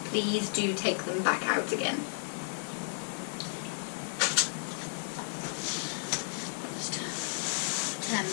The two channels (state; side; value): silent; right; 56 dB below the other